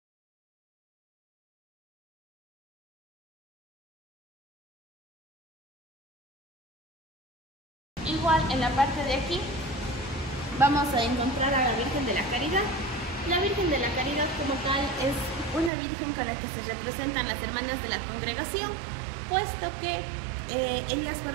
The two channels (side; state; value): left; drops out; at 15.7 s